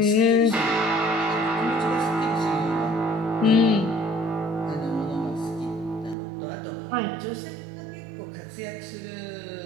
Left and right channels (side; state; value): left; drops out; at 6.2 s